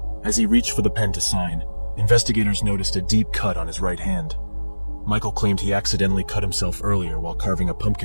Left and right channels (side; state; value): both; inverted; correlation -1.00